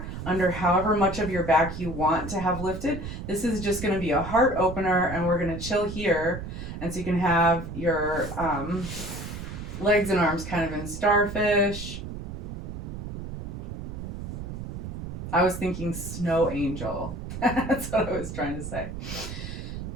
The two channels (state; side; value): noise; right; rumble, 8 dB below the sound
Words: under however much of your back you want to have lifted. This is just going to be a heart opener, and we're going to chill here, and so you can have your legs and arms kind of in starfish. I was thinking snow angel. That's what I was trying to say.